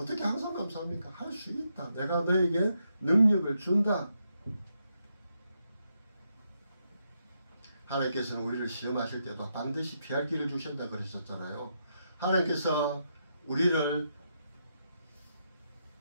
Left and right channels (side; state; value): both; inverted; correlation -0.81